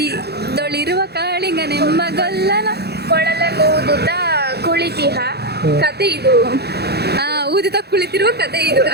ಕಾಳಿಂಗ ನೆಂಬಗಲ್ಲನ ಕೊಳಲೂದುತ್ತ ಕುಳಿತಿಹ ಕತೆ ಇದು. ಊದಿತ ಕುಳಿತಿರುವ ಕತೆ ಇದು.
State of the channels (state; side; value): late; left; 0.48 ms